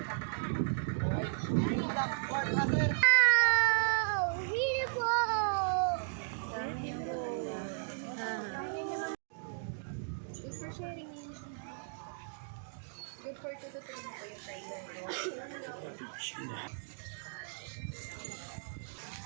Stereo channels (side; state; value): left; silent; digital silence